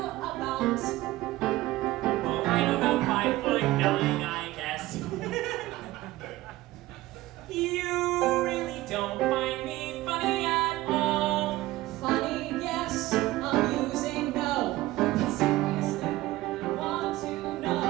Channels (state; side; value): quieter; left; 17.5 dB